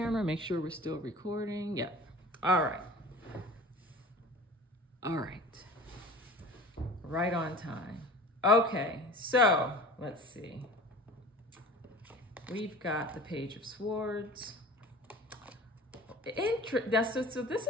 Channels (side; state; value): both; normal; correlation 0.40